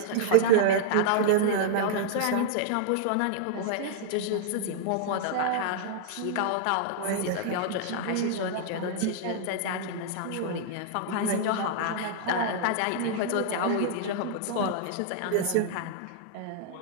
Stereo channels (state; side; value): different; both; correlation -0.01